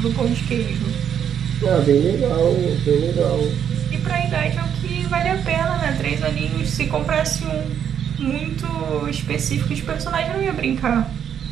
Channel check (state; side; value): quieter; left; 8.7 dB